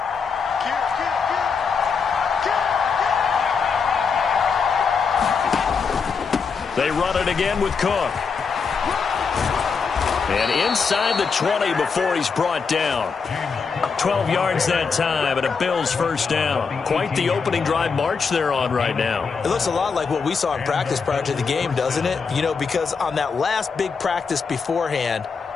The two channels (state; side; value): quieter; right; 5.5 dB